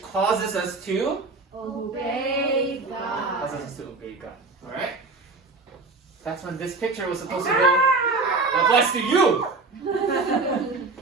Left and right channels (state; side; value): quieter; left; 3.7 dB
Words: causes us to Obey God. causes us to obey God. Alright? That's when this picture was supposed to go. That applies to you!